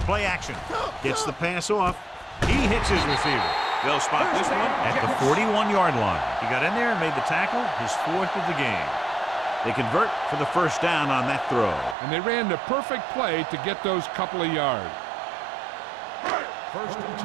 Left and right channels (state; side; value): drops out; left; at 12.0 s